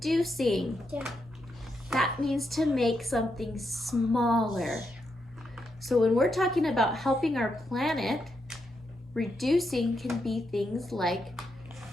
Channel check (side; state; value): both; normal; correlation 0.82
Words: That means to make something smaller. So when we're talking about helping our planet, reducing can be things like